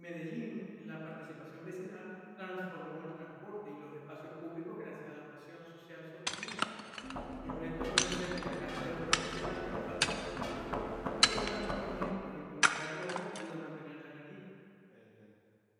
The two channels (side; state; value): both; identical; correlation 1.00